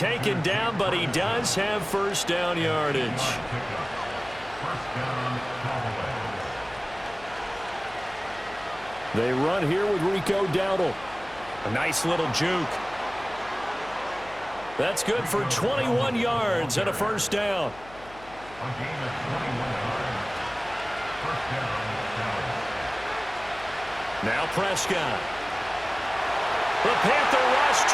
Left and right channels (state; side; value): noise; left; hum, 20 dB below the sound